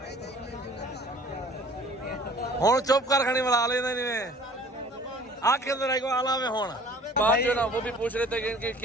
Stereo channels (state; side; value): normal; both; correlation 0.50